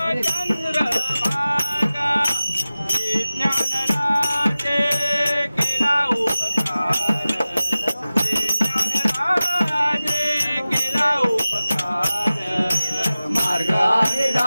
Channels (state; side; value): inverted; both; correlation -0.96